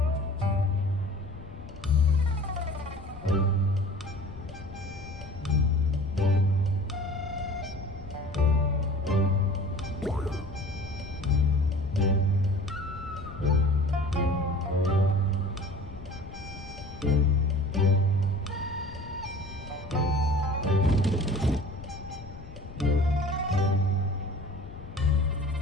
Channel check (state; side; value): noise; left; rumble, 15 dB below the sound